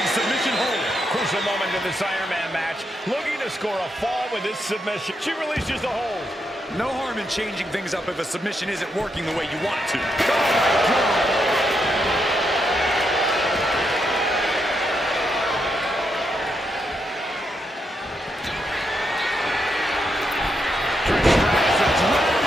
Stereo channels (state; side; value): normal; both; correlation 0.81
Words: Crucial moment into this Iron Man match, looking to score a fall with this submission. She releases the hold. No harm in changing things up if a submission isn't working the way you want it to. Oh, my God.